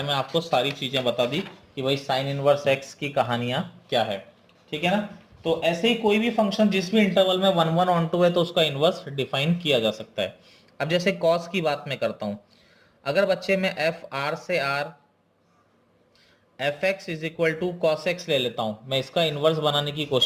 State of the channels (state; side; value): identical; both; correlation 1.00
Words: में आपको सारी चीजें बता दी कि भाई साइन इनवर्स एक्स की कहानियां क्या है, ठीक है ना। तो ऐसे ही कोई भी फंक्शन जिस भी इंटरवल में 1/1 है तो उसका इनवर्स डिफाइन किया जा सकता है। अब जैसे कॉस की बात मैं करता हूं, अगर बच्चे में एफ आर से R F X is equal to cos X ले लेता हूं, मैं इसका इनवर्स बनाने की